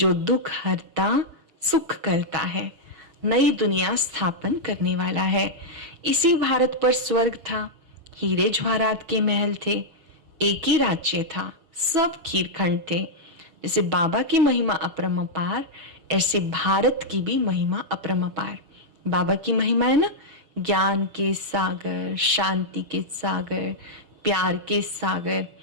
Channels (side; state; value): left; late; 6.2 ms